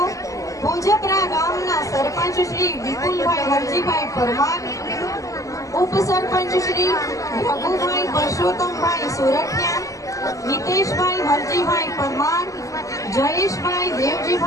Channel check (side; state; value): right; late; 0.16 ms